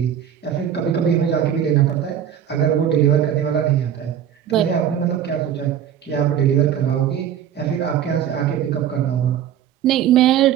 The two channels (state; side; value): quieter; left; 9.6 dB